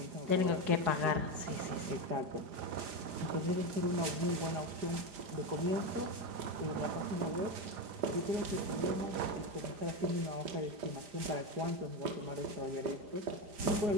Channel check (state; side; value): late; left; 5.1 ms